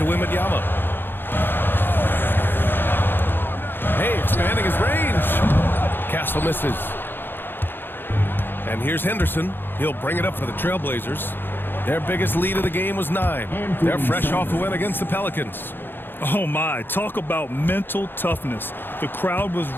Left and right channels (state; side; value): late; right; 0.099 ms